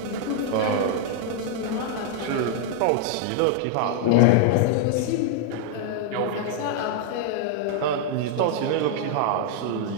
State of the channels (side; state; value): both; different; correlation 0.00